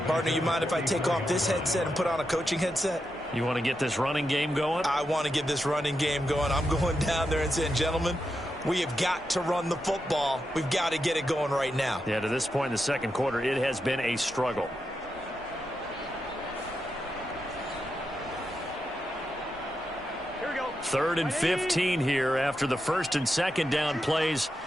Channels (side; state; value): both; normal; correlation 0.87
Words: Partner, you mind if I take off this headset and put on a coaching headset? You want to get this running game going? I want to get this running game going. I'm going down there and saying, gentlemen, we have got to run the football. We've got to get it going right now. Yeah, to this point in the second quarter, it has been a struggle. Here we go. 3rd and 15 here after the 1st and 2nd down plays